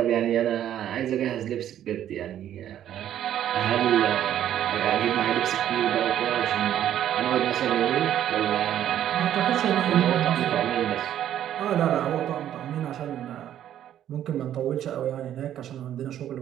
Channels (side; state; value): left; quieter; 11.1 dB